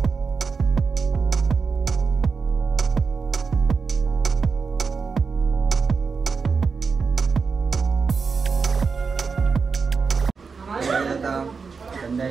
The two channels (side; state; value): left; quieter; 5.1 dB